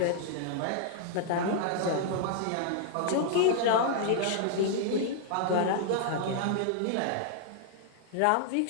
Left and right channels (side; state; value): both; different; correlation -0.01